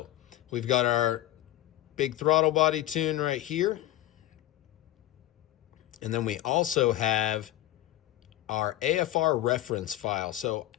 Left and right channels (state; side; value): quieter; right; 14.5 dB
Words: we've got our big throttle body tune right here. And then we also have our AFR reference file. So